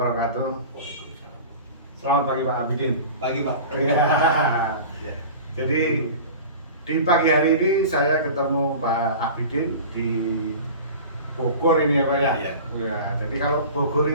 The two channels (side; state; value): both; inverted; correlation -0.37